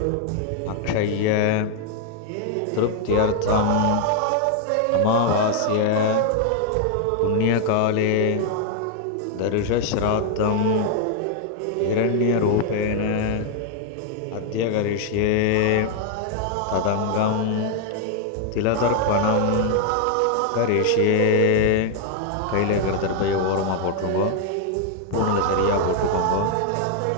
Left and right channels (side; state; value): both; different; correlation 0.00